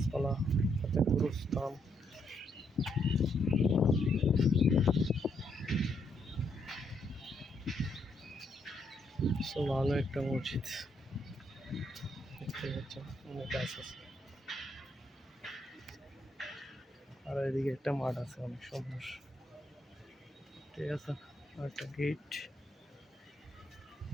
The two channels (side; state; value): both; normal; correlation 0.75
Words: সাথে গুরুস্থান। So, ভালো একটা মসজিদ দেখতে পাচ্ছেন, অনেক গাছ আছে। আর এদিকে একটা মাঠ আছে অনেক সুন্দর, ঠিক আছে, আর একটা গেট।